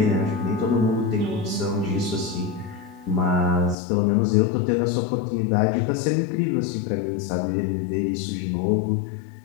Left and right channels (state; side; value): drops out; right; at 3.8 s